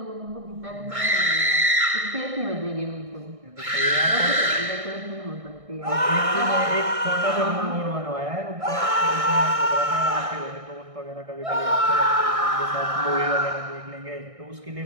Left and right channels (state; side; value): late; left; 1.6 ms